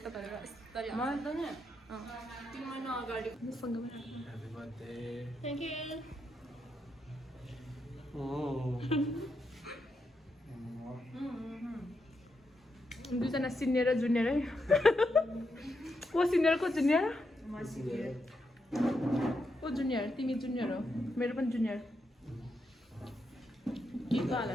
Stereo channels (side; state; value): both; normal; correlation 0.83